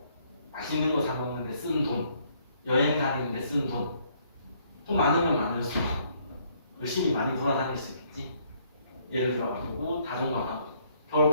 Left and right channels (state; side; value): inverted; both; correlation -0.67